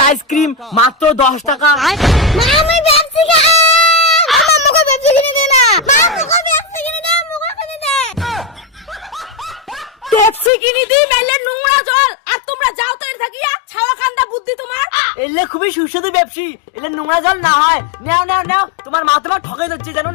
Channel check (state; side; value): drops out; right; at 10.5 s